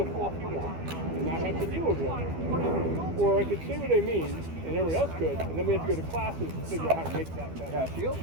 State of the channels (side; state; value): left; late; 12 ms